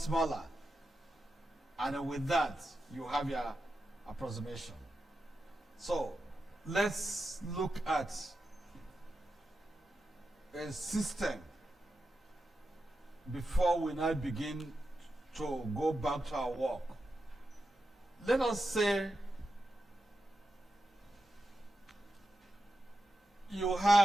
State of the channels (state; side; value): normal; both; correlation 0.89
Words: smaller. And with that, you have your approximation. So let's look at a system before we now begin to go back to our work. Let us say you